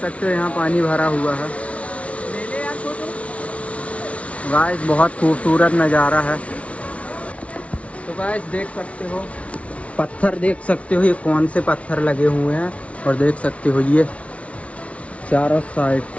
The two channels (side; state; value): right; late; 0.064 ms